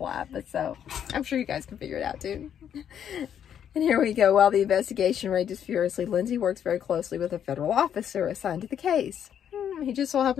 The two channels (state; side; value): quieter; right; 9.1 dB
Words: but so I'm sure you guys can figure it out too. And here we go. While the investigation rages furiously, Lindsay works very closely with a federal officer assigned to the case. He just so